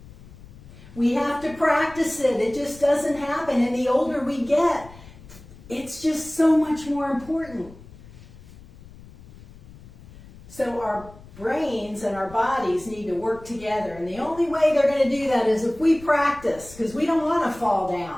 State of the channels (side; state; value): left; noise; rumble, 20 dB below the sound